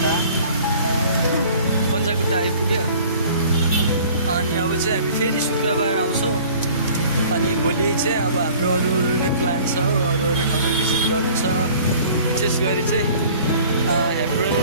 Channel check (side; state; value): both; inverted; correlation -0.49